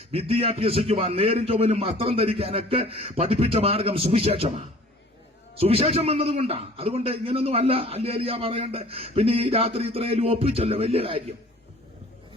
വിദ്യ അഭ്യസിക്കുവാൻ, നേരും ചൊവ്വനും വസ്ത്രം ധരിക്കാനൊക്കെ പഠിപ്പിച്ച മാർഗം സുവിശേഷമാണ്. സുവിശേഷം വന്നതുകൊണ്ടാണ്. അതുകൊണ്ട് ഇങ്ങനൊന്നും അല്ല അല്ലേലിയ പറയണ്ട. പിന്നെ ഈ രാത്രി ഇത്രയും ഒപ്പിച്ചല്ലോ, വലിയ കാര്യം.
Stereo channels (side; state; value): both; normal; correlation 0.49